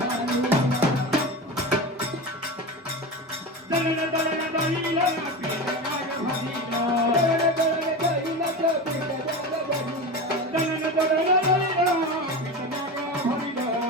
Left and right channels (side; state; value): both; normal; correlation 0.25